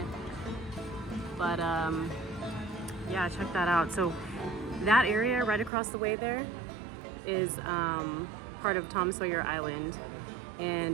But yeah, check that out. So that area right across the way there is part of Tom Sawyer Island.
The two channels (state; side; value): drops out; left; at 5.7 s